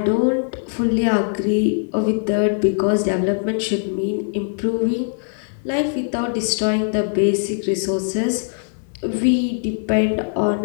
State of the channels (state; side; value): silent; right; 65 dB below the other